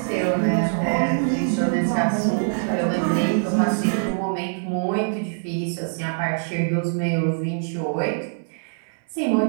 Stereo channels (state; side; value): silent; left; digital silence